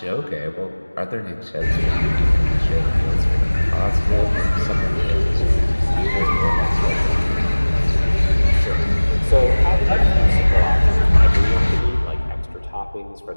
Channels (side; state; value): both; inverted; correlation -1.00